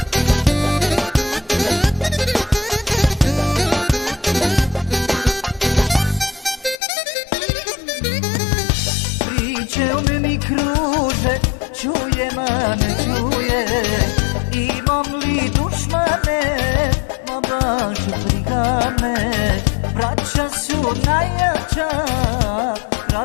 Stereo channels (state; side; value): drops out; right; at 6.8 s